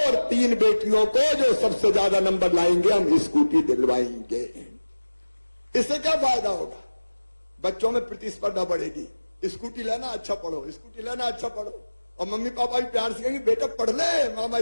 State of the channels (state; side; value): inverted; both; correlation -1.00